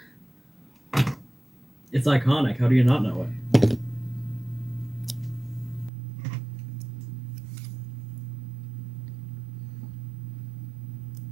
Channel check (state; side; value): drops out; left; at 5.9 s